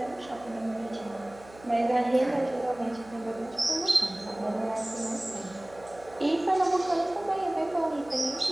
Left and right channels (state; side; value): noise; right; hum, 22 dB below the sound